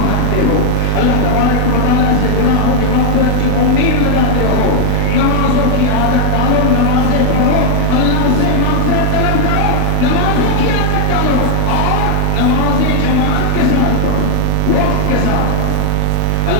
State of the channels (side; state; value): both; different; correlation 0.01